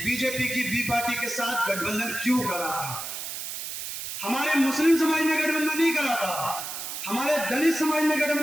की बी पार्टी के साथ गठबंधन क्यों करा था। हमारे मुस्लिम समाज ने गठबंधन नहीं करा था, हमारे दलित समाज ने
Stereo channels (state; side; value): noise; right; hiss, 6 dB below the sound